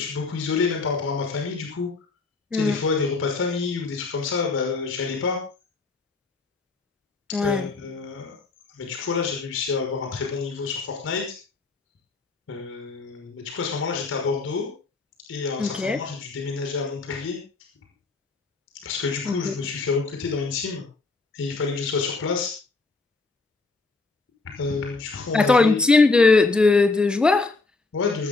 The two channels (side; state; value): right; quieter; 3.8 dB